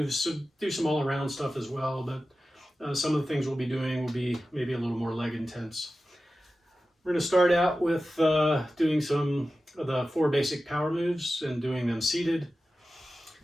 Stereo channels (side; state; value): both; normal; correlation 0.94